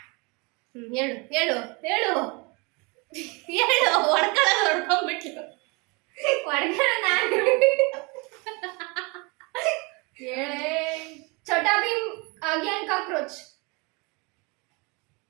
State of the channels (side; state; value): left; quieter; 28.6 dB